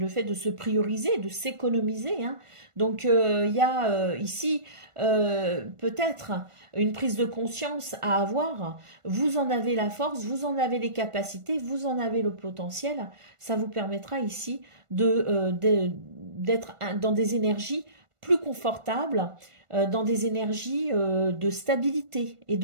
fait de se prioriser, de s'économiser, hein. Donc il y a ici peut-être une prise de conscience à avoir. Vous en avez la force, vous en avez les capacités, vous en avez le potentiel. Ça vous permettra ici d'être dans des énergies plus confortables, dans des énergies de stabilité et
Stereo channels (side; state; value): left; late; 1.5 ms